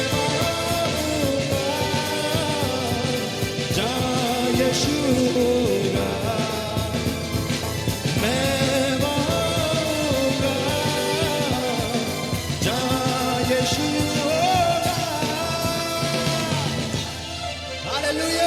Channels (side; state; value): both; identical; correlation 1.00